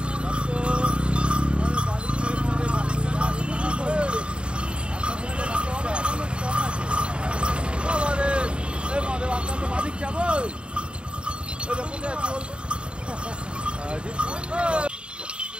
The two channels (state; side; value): late; left; 0.054 ms